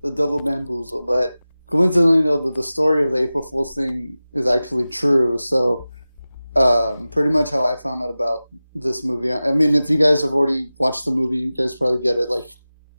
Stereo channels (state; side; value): inverted; both; correlation -0.96